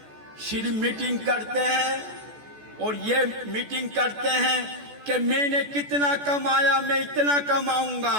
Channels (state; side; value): late; left; 14 ms